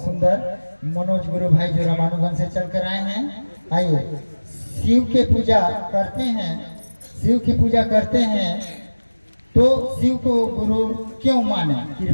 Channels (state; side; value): inverted; both; correlation -1.00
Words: सुंदर मनोज गुरु भाई जो रामानुगंज से चल कर आए हैं। आइए, शिव के पूजा करते हैं, शिव की पूजा करते हैं तो शिव को गुरु क्यों माने,